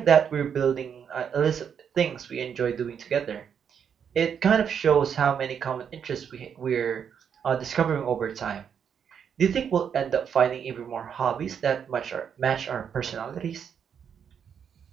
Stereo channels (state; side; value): quieter; left; 7.7 dB